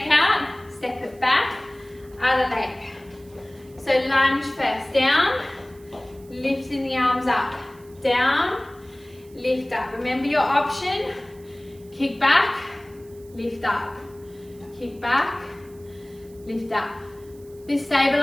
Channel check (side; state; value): right; noise; hiss, 27 dB below the sound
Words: out, step it back, other leg. So lunge first, down, lifting the arms up, down, lift up. Remember your option, kick back, lift up, kick back, lift up. This